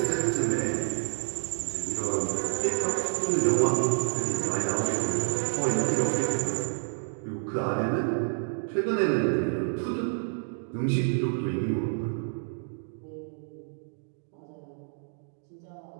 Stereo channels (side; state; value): left; silent; digital silence